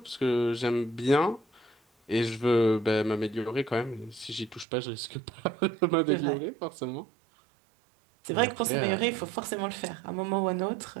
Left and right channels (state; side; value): drops out; left; at 4.7 s